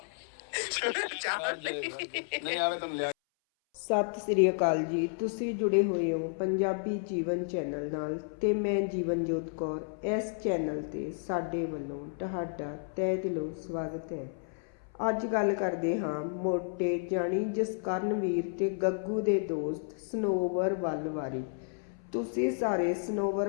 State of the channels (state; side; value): silent; right; 57 dB below the other